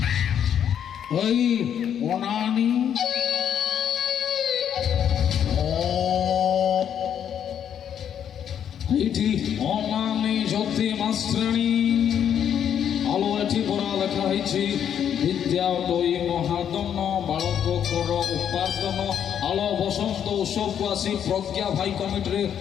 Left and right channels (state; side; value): quieter; right; 9.0 dB